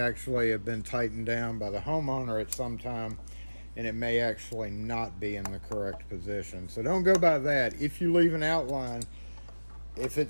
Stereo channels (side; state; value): both; inverted; correlation -1.00